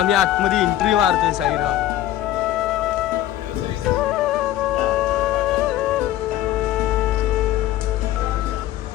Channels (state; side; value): quieter; right; 13.2 dB